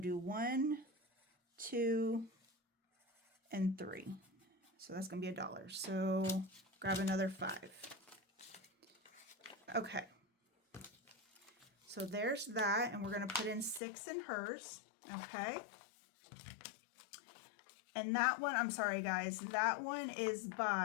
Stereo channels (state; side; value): drops out; right; at 13.8 s